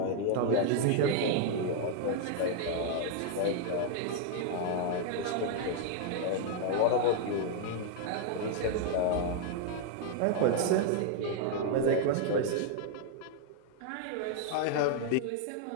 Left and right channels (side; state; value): both; different; correlation 0.00